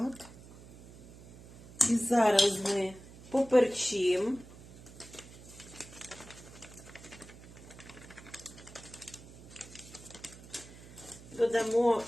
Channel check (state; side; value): noise; right; hum, 18 dB below the sound